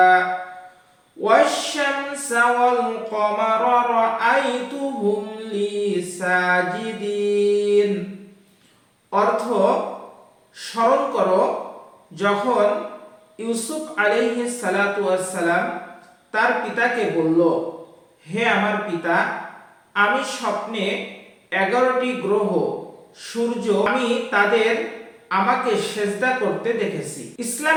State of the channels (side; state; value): both; identical; correlation 1.00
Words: ওয়াশ-শামসা ওয়াল কমারা রাআইতুহুম লি সাজিদিন। অর্থ: স্মরণ করো যখন ইউসুফ আলাইহিস সালাতু ওয়াস সালাম তার পিতাকে বলল, হে আমার পিতা, আমি স্বপ্নে 11টি গ্রহ, সূর্য, আমি তাদের আমাকে সেজদা করতে দেখেছি।